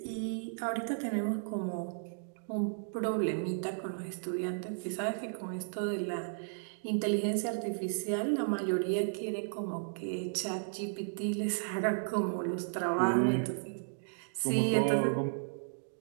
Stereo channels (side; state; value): left; silent; digital silence